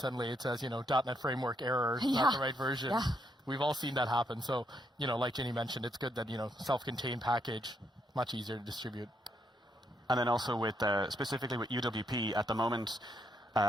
it says .NET framework error, not the right version. Yeah. We've all seen that happen. So like Ginny mentioned, it's good that self-contained package, much easier to distribute. And then also with specifically with UWP at the moment,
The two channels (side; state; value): both; normal; correlation 0.76